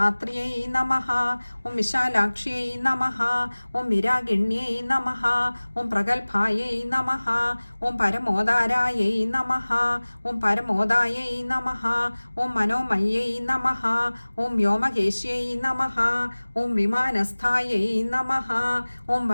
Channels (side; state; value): both; inverted; correlation -1.00